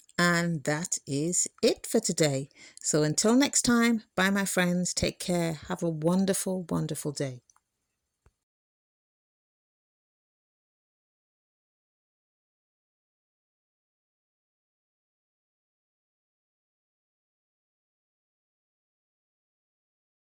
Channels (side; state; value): both; identical; correlation 1.00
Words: And that is it for today. So until next time, bye my friends, take care, have a wonderful day.